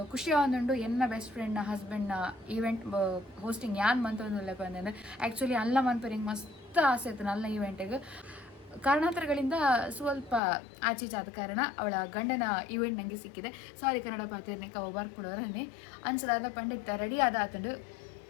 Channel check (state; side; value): drops out; right; at 10.4 s